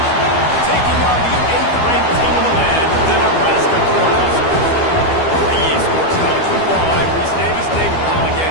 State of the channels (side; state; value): right; late; 12 ms